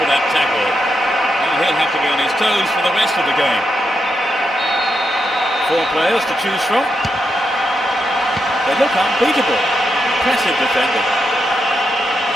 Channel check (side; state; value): both; normal; correlation 0.84